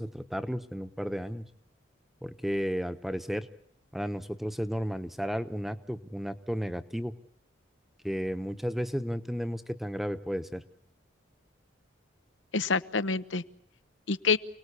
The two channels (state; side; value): normal; both; correlation 0.59